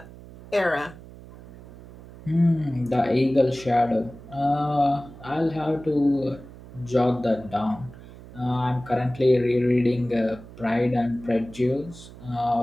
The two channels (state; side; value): noise; right; hum, 18 dB below the sound